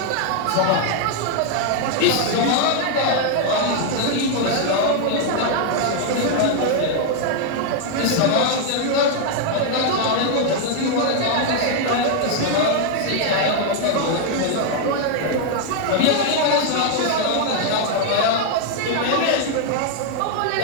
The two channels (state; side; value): different; both; correlation 0.00